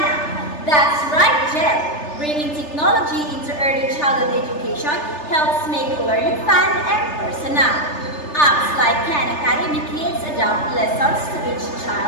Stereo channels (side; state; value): right; late; 3.3 ms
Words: That's right, Jel. Bringing technology into early childhood education helps make learning fun and personal. Apps like Khan Academy Kids adapt lessons to each